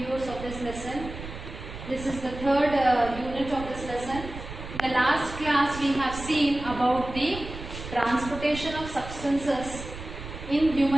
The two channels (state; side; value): noise; right; rumble, 11 dB below the sound